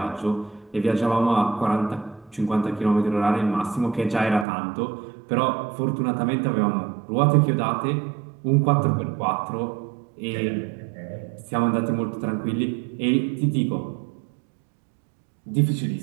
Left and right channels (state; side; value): drops out; left; at 4.5 s